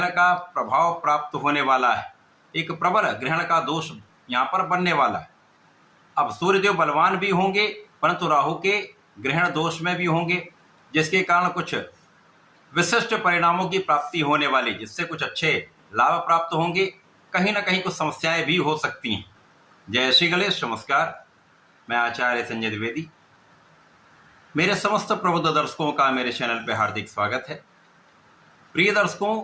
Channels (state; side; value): identical; both; correlation 1.00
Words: का प्रभाव प्राप्त होने वाला है। एक प्रबल ग्रहण का दोष यहाँ पर बनने वाला है। अब सूर्यदेव बलवान भी होंगे परंतु राहु के ग्रहण दोष में भी होंगे, जिसके कारण कुछ विशिष्ट परिणामों की प्राप्ति होने वाली, जिससे कुछ अच्छे लाभ प्राप्त होंगे। कहीं ना कहीं कुछ समस्याएं भी हो सकती हैं। जय श्री गणेश। नमस्कार, मैं आचार्य संजय द्विवेदी। मेरे समस्त प्रबुद्ध दर्शकों का मेरे चैनल पर हार्दिक स्वागत है। प्रिय दर्शकों,